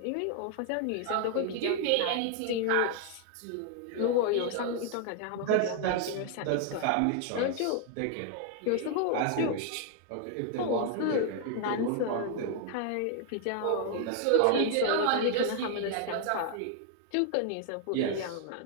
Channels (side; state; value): both; different; correlation 0.00